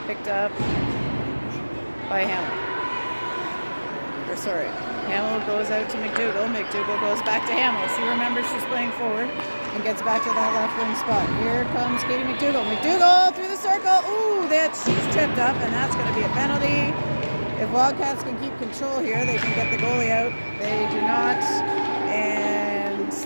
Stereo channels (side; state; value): both; inverted; correlation -1.00